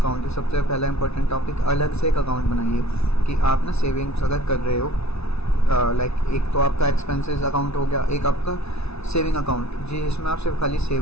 है, सबसे पहला इंपॉर्टेंट टॉपिक, अलग से एक अकाउंट बनाइए कि आप ना सेविंग्स अगर कर रहे हो, एक तो आपका एक्सपेंसेस अकाउंट हो गया, एक आपका सेविंग अकाउंट जिसमें आप सिर्फ खाली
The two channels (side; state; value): right; late; 0.80 ms